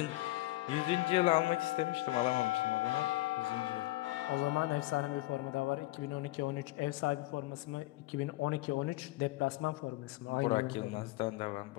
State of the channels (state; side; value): quieter; right; 19.4 dB